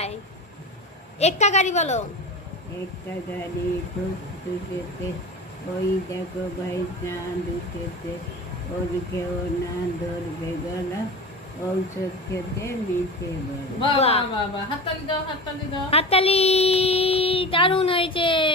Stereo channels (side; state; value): both; normal; correlation 0.31